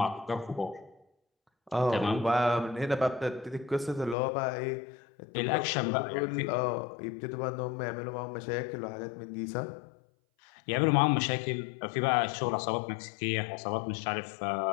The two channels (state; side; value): drops out; right; at 4.2 s